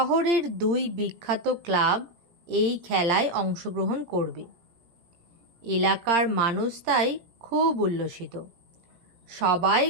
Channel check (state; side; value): late; left; 17 ms